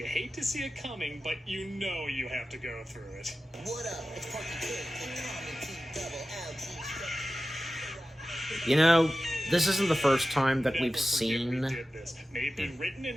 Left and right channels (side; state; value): both; normal; correlation 0.94